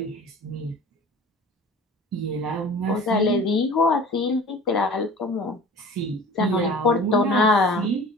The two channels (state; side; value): normal; both; correlation 0.42